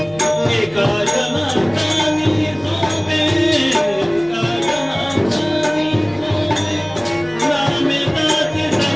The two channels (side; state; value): left; noise; hum, 25 dB below the sound